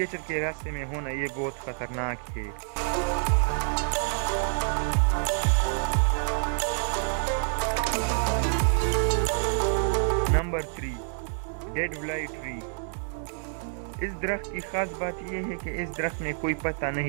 के रास्ते में होना ये बहुत खतरनाक है। Number 3, dead fly tree. इस दरख्त की खास बात यह है कि इस दरख्त में कोई पत्ता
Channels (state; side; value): silent; left; 59 dB below the other